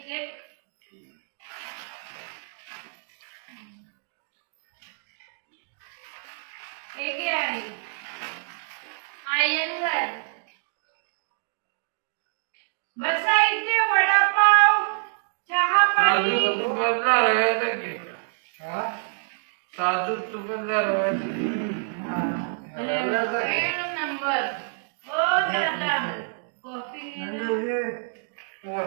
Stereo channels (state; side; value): silent; left; digital silence